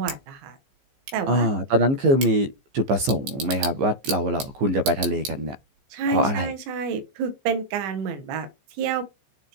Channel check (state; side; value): late; left; 15 ms